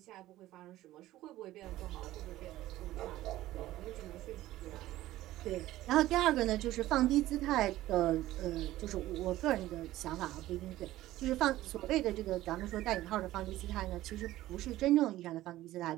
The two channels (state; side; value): quieter; left; 15.5 dB